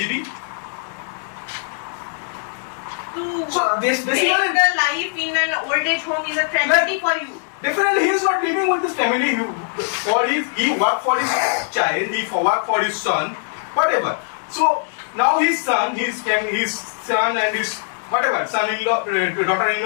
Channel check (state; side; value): silent; right; digital silence